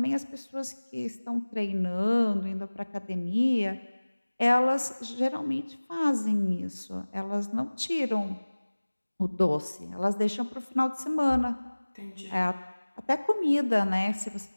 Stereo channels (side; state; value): both; inverted; correlation -1.00